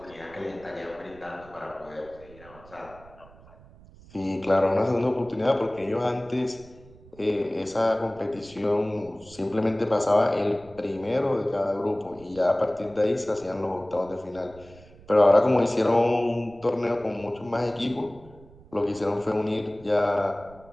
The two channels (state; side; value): noise; right; rumble, 23 dB below the sound